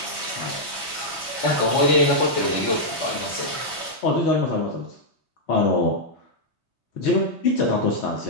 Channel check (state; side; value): late; right; 3.2 ms